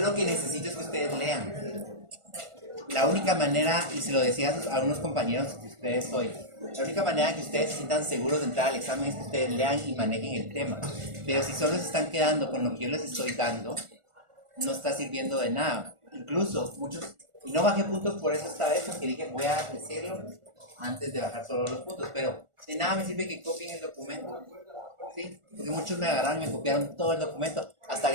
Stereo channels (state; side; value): late; left; 1.4 ms